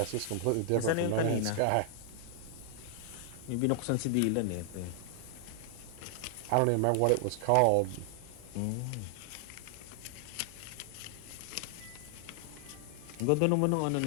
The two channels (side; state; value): both; different; correlation 0.00